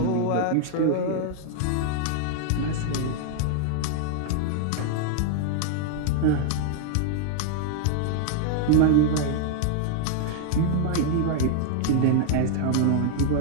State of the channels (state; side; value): different; both; correlation -0.01